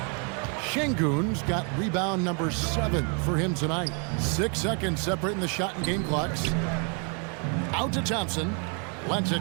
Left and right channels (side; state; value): left; quieter; 37.0 dB